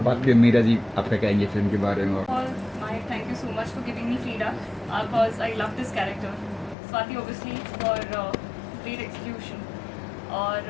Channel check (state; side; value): drops out; right; at 6.8 s